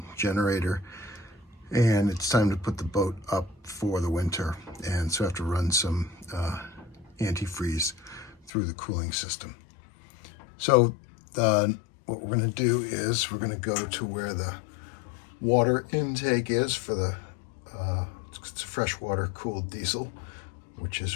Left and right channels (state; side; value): drops out; right; at 8.5 s